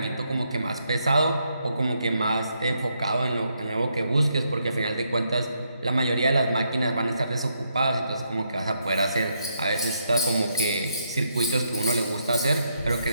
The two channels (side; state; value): both; inverted; correlation -0.78